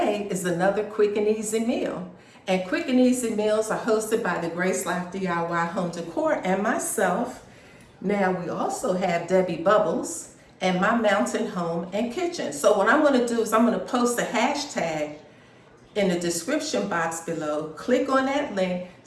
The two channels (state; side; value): identical; both; correlation 1.00